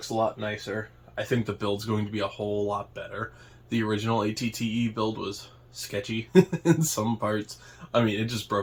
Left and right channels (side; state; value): both; identical; correlation 1.00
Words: a lot nicer. I think the build's going to be a whole lot better. The original AT-TE build was sketchy in some parts. I mean, it just